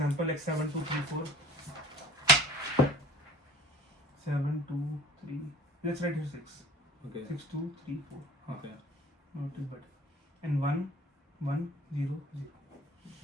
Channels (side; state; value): both; normal; correlation 0.46